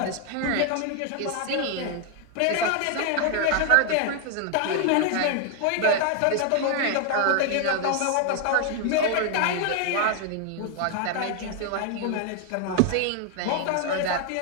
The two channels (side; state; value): both; different; correlation 0.00